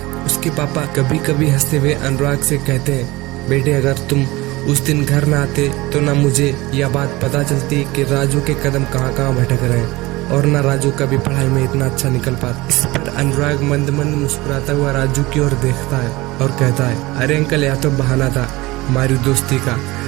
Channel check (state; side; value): quieter; left; 20.7 dB